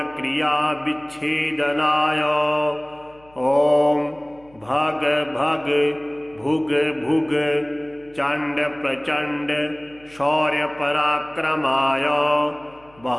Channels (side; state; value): left; noise; hum, 28 dB below the sound